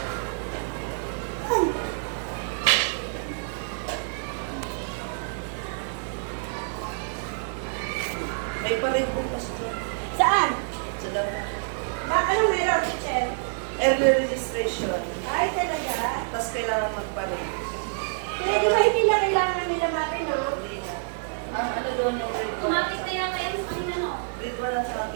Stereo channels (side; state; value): left; silent; digital silence